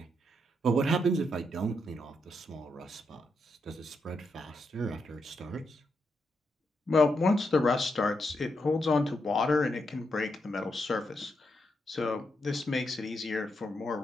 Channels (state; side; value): normal; both; correlation 0.82